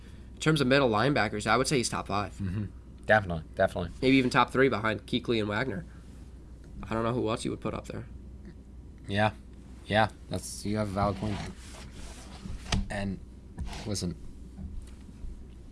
in terms of middle linebackers, I would say he's top 5. Definitely. Maybe even top 3 behind Kuechly and Wagner. I don't know who else you would put up there. Yeah, you have a valid point. And listen,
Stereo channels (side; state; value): both; identical; correlation 1.00